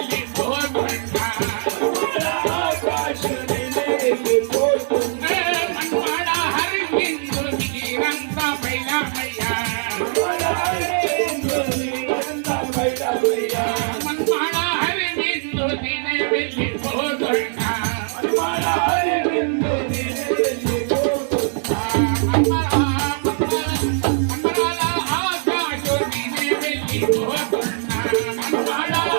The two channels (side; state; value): left; silent; 56 dB below the other